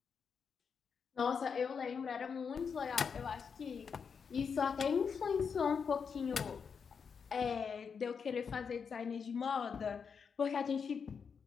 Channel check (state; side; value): quieter; right; 6.2 dB